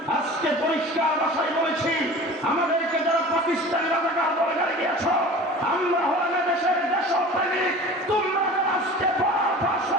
আজকে পরিষ্কার ভাষায় বলেছি, আমাদেরকে যারা পাকিস্তানি রাজাকার বলে গালি দিয়েছ, আমরা হলাম দেশের দেশপ্রেমিক। তোমরা যারা আজকে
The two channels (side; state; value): both; normal; correlation 0.39